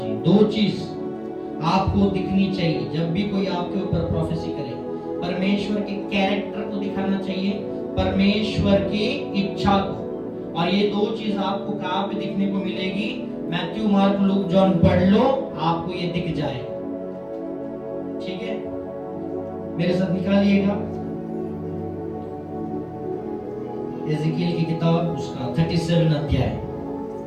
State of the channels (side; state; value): both; identical; correlation 1.00